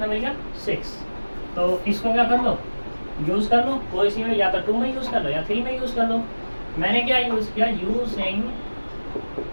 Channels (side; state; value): both; inverted; correlation -1.00